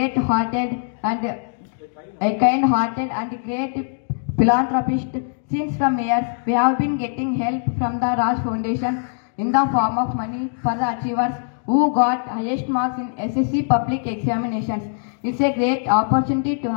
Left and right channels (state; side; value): silent; right; digital silence